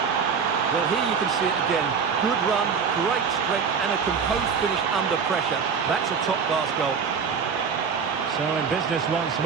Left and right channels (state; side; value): quieter; left; 6.1 dB